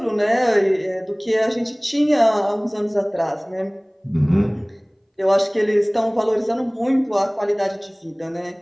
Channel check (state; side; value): identical; both; correlation 1.00